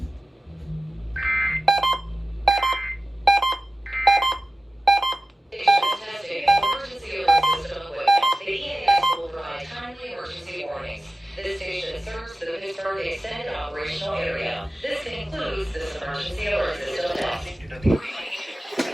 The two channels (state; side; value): normal; both; correlation 0.95